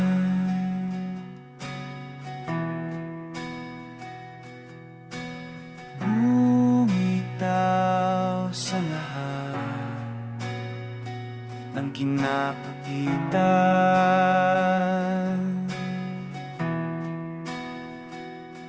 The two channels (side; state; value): both; identical; correlation 1.00